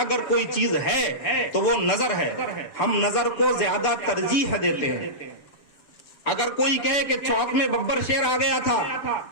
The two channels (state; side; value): late; right; 7.1 ms